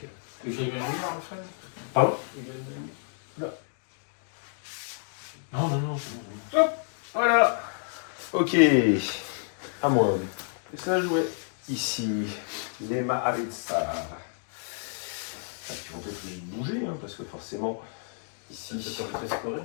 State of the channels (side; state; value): right; silent; digital silence